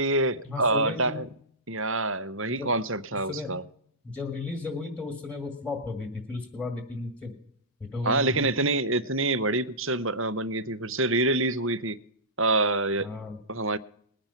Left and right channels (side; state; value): both; normal; correlation -0.18